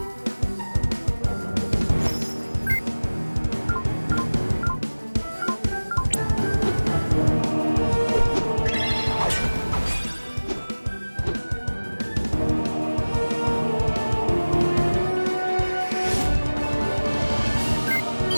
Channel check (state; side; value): inverted; both; correlation -1.00